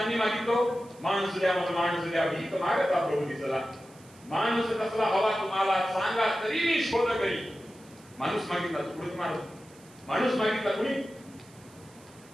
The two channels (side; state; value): right; noise; hiss, 26 dB below the sound